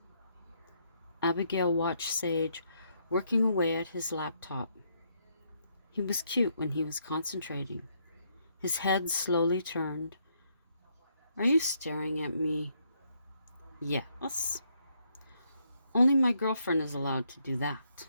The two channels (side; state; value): both; inverted; correlation -0.74